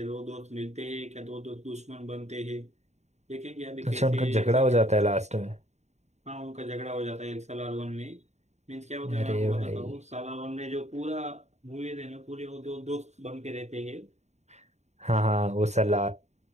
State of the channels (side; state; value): left; late; 0.33 ms